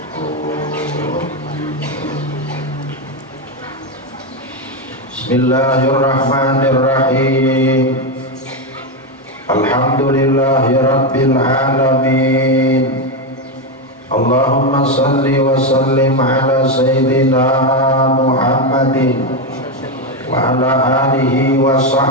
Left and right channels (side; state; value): both; normal; correlation 0.09